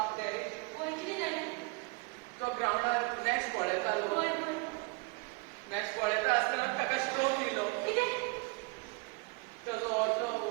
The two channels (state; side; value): quieter; left; 29.1 dB